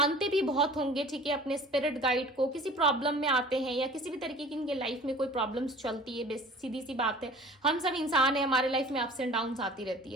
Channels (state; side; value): normal; both; correlation 0.45